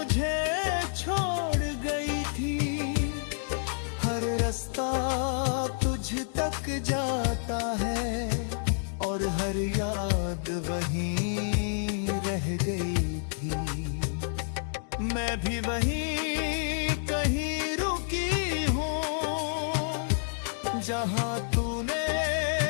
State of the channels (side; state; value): right; silent; digital silence